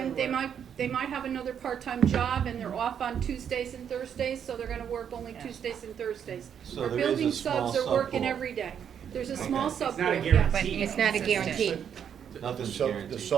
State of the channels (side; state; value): left; quieter; 8.3 dB